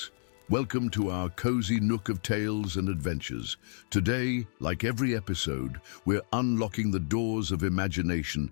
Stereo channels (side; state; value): right; silent; digital silence